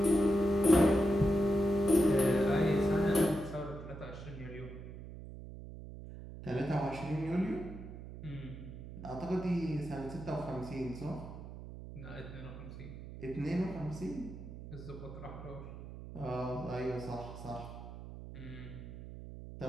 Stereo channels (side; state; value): right; noise; hum, 12 dB below the sound